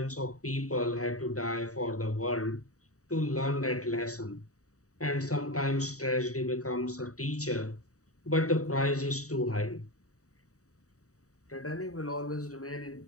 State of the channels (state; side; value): late; right; 0.66 ms